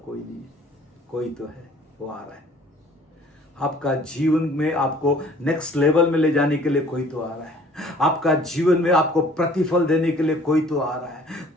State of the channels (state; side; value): normal; both; correlation 0.54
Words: कोई नहीं है। कोई तो है, वो आ रहा है। आपका जीवन में आपको नेक्स्ट लेवल में ले जाने के लिए कोई तो आ रहा है। आपका जीवन में आपको प्रतिफल देने के लिए कोई तो आ रहा है।